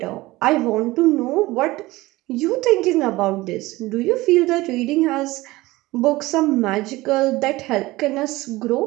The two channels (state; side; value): quieter; left; 19.4 dB